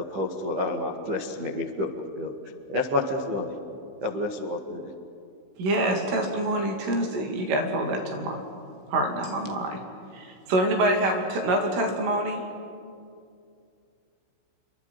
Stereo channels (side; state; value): left; late; 16 ms